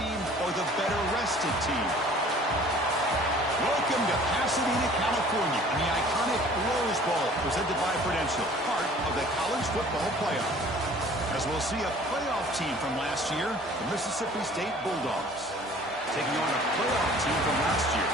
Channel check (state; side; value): normal; both; correlation 0.50